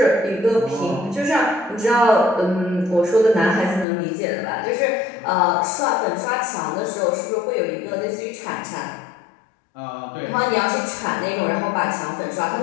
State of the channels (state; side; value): drops out; right; at 3.9 s